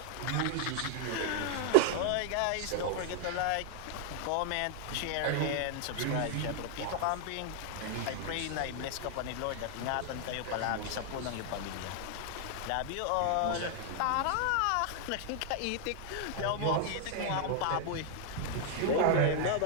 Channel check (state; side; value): different; both; correlation 0.00